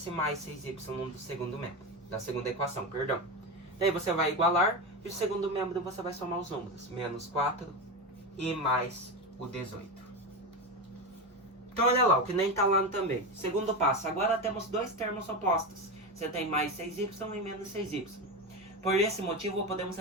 mais 6y do segundo membro, da segunda equação, perdão. Daí você vai igualar e o segundo membro você vai somar os números. Menos 4 e mais o 18. Então olha lá, o que nem tá lá também. Segundo passo, agora temos dois termos opostos. Você tem mais 6y e menos 6y. Por esse motivo, podemos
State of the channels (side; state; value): both; normal; correlation 0.18